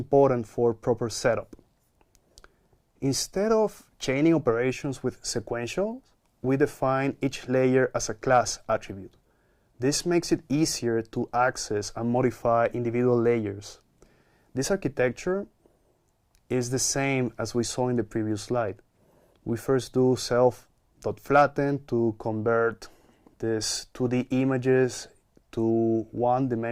for proper setup. Instead of chaining operations with sequentials, we define each layer as a class attribute. This makes it easier to access and modify individual layers. This architecture is the same as we saw in the previous slide. We first do self.flatten to convert these 2D images to one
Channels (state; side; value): identical; both; correlation 1.00